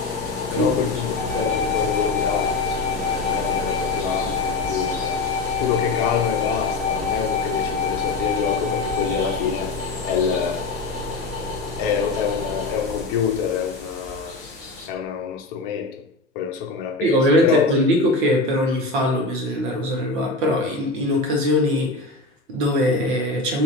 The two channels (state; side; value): quieter; right; 3.3 dB